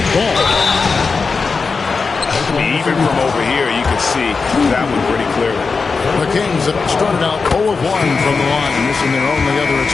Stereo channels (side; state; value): right; quieter; 4.7 dB